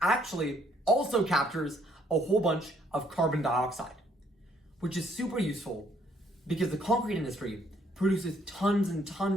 actually also captures a whole bunch of carbon dioxide, which is super useful because the concrete industry produces tons and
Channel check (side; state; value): both; normal; correlation 0.66